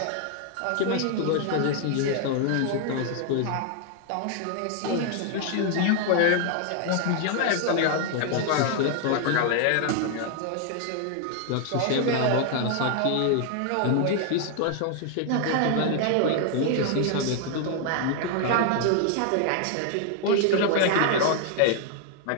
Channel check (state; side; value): different; both; correlation 0.00